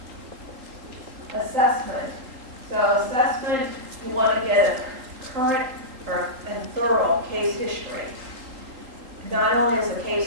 Assessment. So assessment, you want to get a current and thorough case history. Not only is the case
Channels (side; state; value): left; late; 3.8 ms